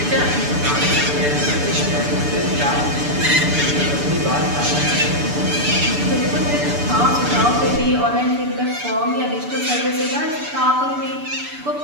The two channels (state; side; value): late; left; 6.9 ms